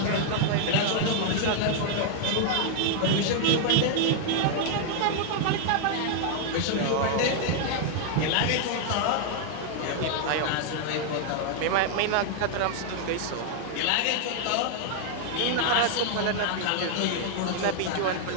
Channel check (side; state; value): both; different; correlation 0.00